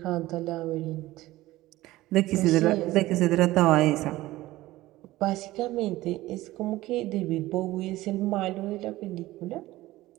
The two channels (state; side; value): quieter; left; 17.3 dB